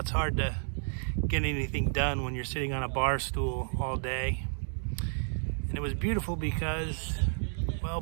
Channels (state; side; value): silent; left; 57 dB below the other